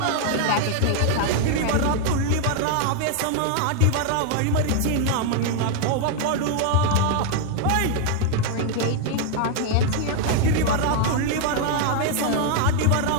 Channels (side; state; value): both; different; correlation 0.00